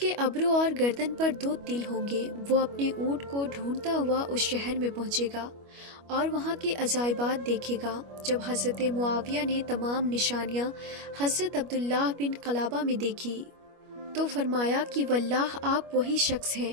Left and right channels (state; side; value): late; left; 25 ms